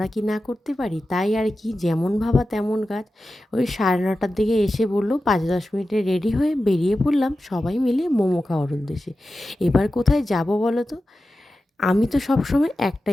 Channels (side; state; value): both; normal; correlation 0.93